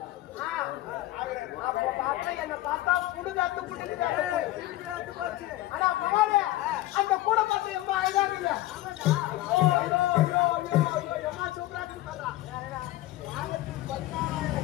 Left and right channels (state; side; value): quieter; right; 16.2 dB